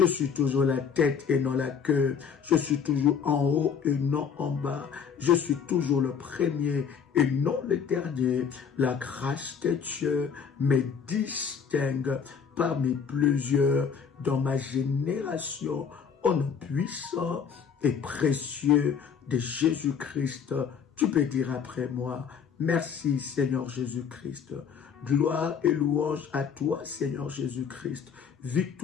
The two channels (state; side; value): quieter; right; 6.8 dB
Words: suis toujours la tête et non la queue. Je suis toujours en haut et non en bas. Je suis toujours le premier et non le dernier. La grâce de Dieu me distingue parmi plusieurs dans ma génération. Au nom puissant et précieux de Jésus-Christ. Tu peux dire après moi: merci Seigneur Jésus-Christ. Gloire et louange à toi Seigneur Jésus-Christ.